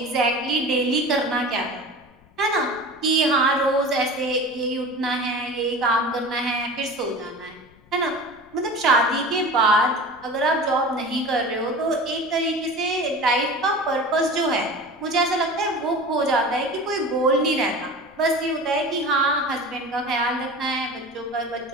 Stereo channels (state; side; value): noise; left; rumble, 28 dB below the sound